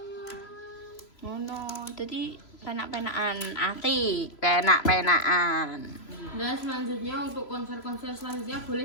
Ngono, dadi penak-penakan ati, penak-penakan. Dan selanjutnya untuk konser-konser selanjutnya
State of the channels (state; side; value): late; right; 3.0 ms